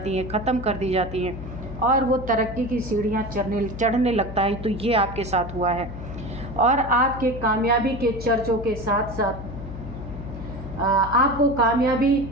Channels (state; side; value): noise; left; hum, 10 dB below the sound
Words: हैं, ख़त्म कर दी जाती हैं और वो तरक्की की सीढ़ियाँ चढ़ने लगता है। तो ये आपके साथ हुआ है। और आपके कामयाबी के चर्चों के साथ साथ आपको कामयाबी